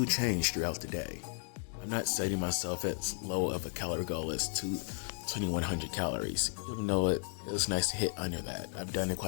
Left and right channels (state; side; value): silent; right; 55 dB below the other